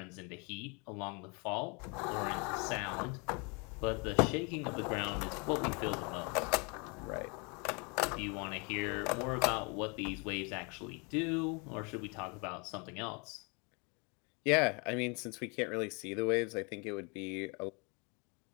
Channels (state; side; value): quieter; right; 32.0 dB